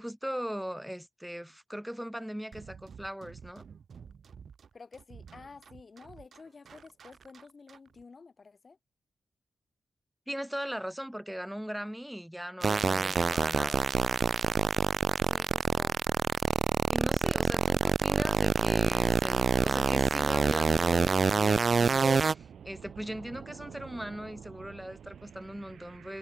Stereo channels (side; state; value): left; quieter; 4.3 dB